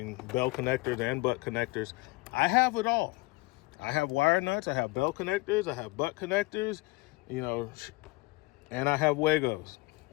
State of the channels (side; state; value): right; quieter; 22.8 dB